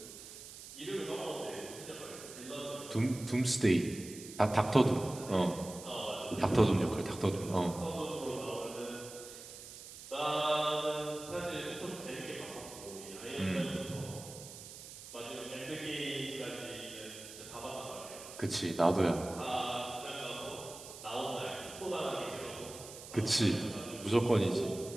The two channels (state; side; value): noise; right; hiss, 14 dB below the sound